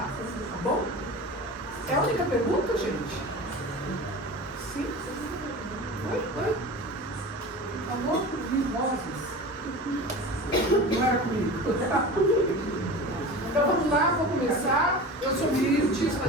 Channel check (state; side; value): normal; both; correlation 0.33